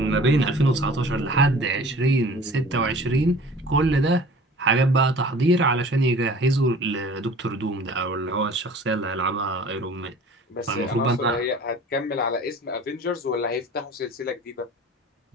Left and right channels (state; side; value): normal; both; correlation 0.45